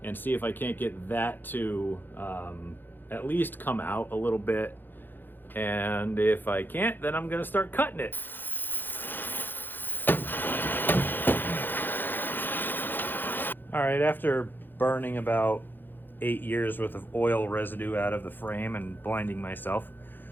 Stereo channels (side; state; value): right; late; 0.092 ms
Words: and see if I can't get that to at least come out a little bit. And if I can't, then I'm gonna start cutting it. All right, after burning about 8 years worth of oil residue out of the frame and blinding myself,